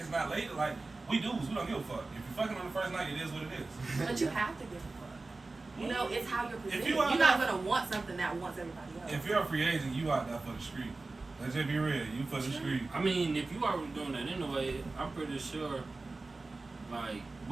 not lady. Like we dudes, we don't give a fuck. If you're fucking on the first night, it is what it is. But you have to give a fuck. It's how you're presented. you You're are not not- gonna want something that wants everybody else. If you're a free agent, you out there for the street. Let's just be real. You for the street. I mean, if you already doing that anyway, I'm pretty sure, like,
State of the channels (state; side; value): quieter; left; 3.4 dB